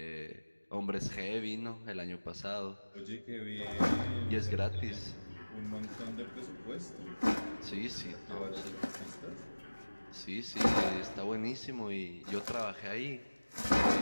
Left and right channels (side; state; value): both; inverted; correlation -1.00